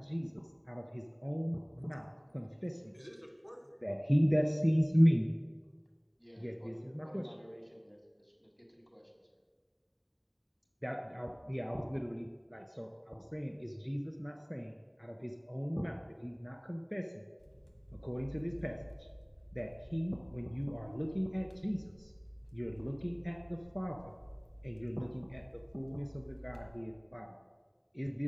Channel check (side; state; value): both; identical; correlation 1.00